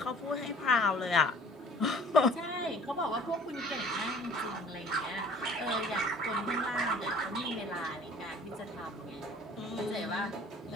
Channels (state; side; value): normal; both; correlation 0.51